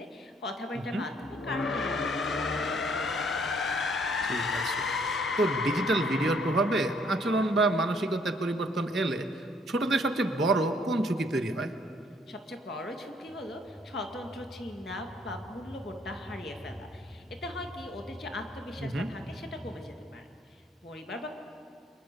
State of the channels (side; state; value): both; normal; correlation 0.65